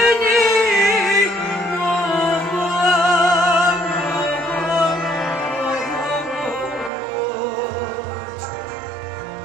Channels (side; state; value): left; drops out; at 6.9 s